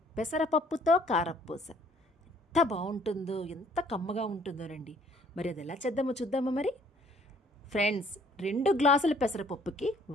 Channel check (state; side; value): normal; both; correlation 0.60